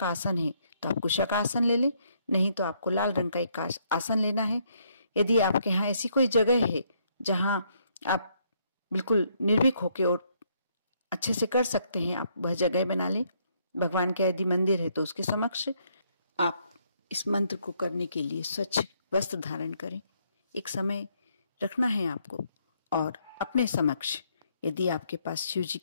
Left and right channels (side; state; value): both; inverted; correlation -0.71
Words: आसन है तो आप कुशा का आसन ले लें, नहीं तो आपको लाल रंग का एक आसन लेना है। यदि आपके यहाँ ऐसी कोई जगह है जहां आप बिल्कुल निर्भीक होके और अच्छे से कर सकते हैं, आप वह जगह बना लें। भगवान का यदि मंदिर है तो उसके समक्ष आप इस मंत्र को करने के लिए स्वच्छ वस्त्र धारण करें। एक समय रखना है आपको, और अपने समक्ष यदि आपके पास शिव जी